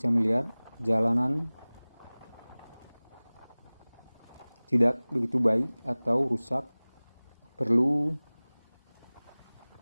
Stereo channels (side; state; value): both; inverted; correlation -1.00